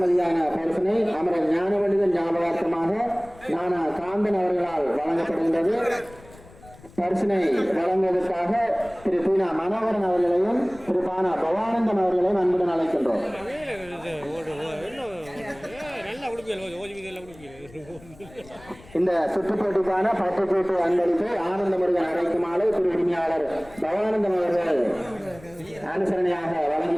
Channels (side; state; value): left; noise; rumble, 22 dB below the sound